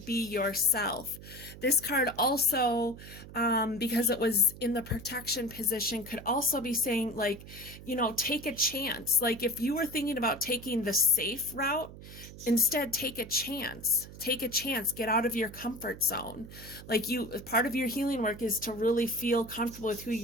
yourself. This card also, because it was in the protection position, could also be saying, like, you know, take a chance. Like if you were thinking about taking the safe route, instead take a chance. Take a chance. Get out of your comfort zone. Like part of your healing work is to really feel comfortable with who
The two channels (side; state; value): right; noise; hum, 15 dB below the sound